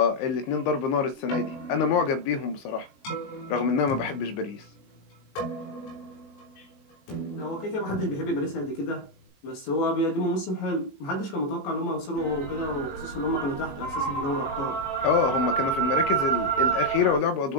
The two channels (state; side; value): late; right; 15 ms